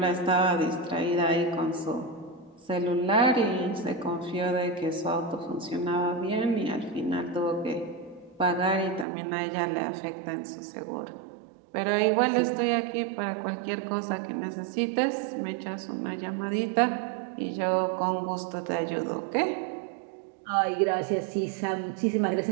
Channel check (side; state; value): left; drops out; at 9.1 s